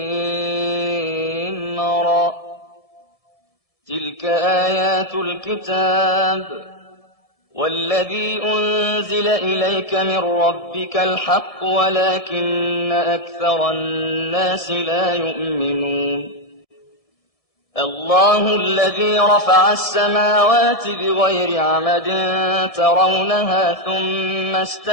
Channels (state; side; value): late; right; 1.7 ms